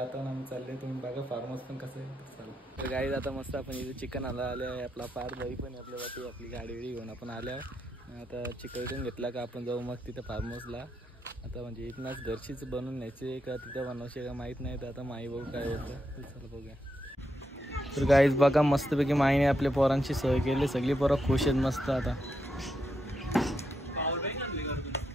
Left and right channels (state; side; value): normal; both; correlation 0.82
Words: आम्ही चालले, तुम्ही बघा फार्म हाऊस पण कसं आहे. चालू तर गाईज आता मस्त आपण इथे चिकन आले आहे. आपला पार बाई पण आपल्यावरती आपली गाडी घेऊन आपण आल्या. आता चिकन घेतला का आपण जाऊ मग तिथं फार्म हाऊसला. आता म्हणजे इथनंच घरचीच बनवून न्यायची का तिथं बनवायची का माहीत नाही. तर आता माई बघू काय होतं. तर चला बघूया. तर गाईज बघा मस्तपैकी माईने आपल्या पोरांची सोय केली. सगळी पोरं खुश आहेत मस्त. आता